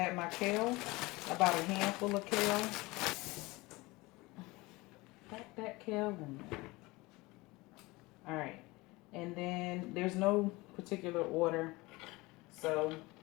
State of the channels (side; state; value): right; quieter; 22.4 dB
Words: my kale, about a handful of kale. Pack that kale in there. Alright. And then there's no particular order. So